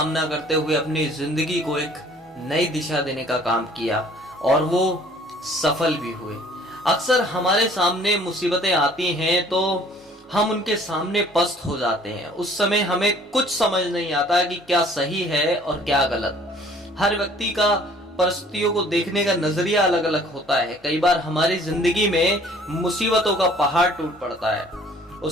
करते हुए अपनी जिंदगी को एक नई दिशा देने का काम किया और वो सफल भी हुए। अक्सर हमारे सामने मुसीबतें आती हैं तो हम उनके सामने पस्त हो जाते हैं। उस समय हमें कुछ समझ नहीं आता कि क्या सही है और क्या गलत। हर व्यक्ति का परिस्थितियों को देखने का नजरिया अलग अलग होता है। कई बार हमारी जिंदगी में मुसीबतों का पहाड़ टूट पड़ता है।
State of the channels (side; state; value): both; normal; correlation 0.55